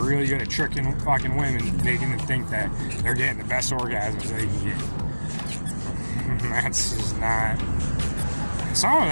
good at tricking fucking women, making them think that they're getting the best orgasms they can get. That's just not... Some of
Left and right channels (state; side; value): inverted; both; correlation -1.00